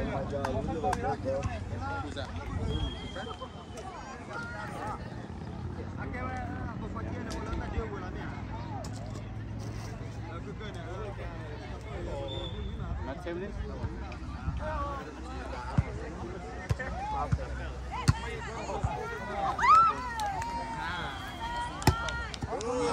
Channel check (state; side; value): identical; both; correlation 1.00